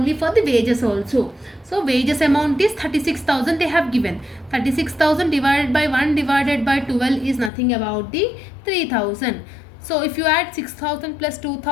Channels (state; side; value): drops out; right; at 7.5 s